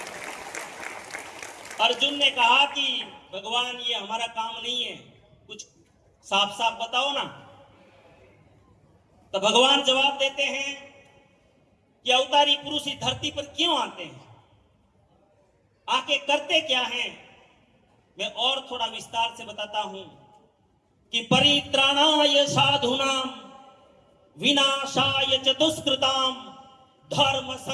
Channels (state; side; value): identical; both; correlation 1.00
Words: अर्जुन ने कहा कि भगवान ये हमारा काम नहीं है, कुछ साफ साफ बताओ ना। तो भगवान जवाब देते हैं कि अवतारी पुरुष इस धरती पर क्यों आते हैं, आके करते क्या हैं। मैं और थोड़ा विस्तार से बताता हूं कि परित्राणाय साधूनाम विनाशाय च दुष्कृताम धर्म